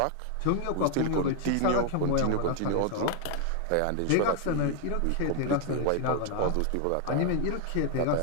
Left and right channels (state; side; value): different; both; correlation 0.00